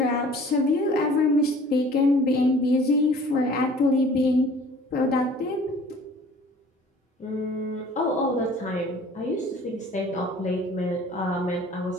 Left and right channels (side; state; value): both; normal; correlation 0.50